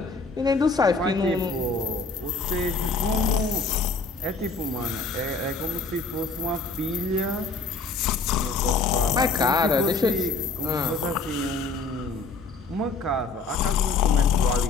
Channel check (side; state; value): right; quieter; 4.0 dB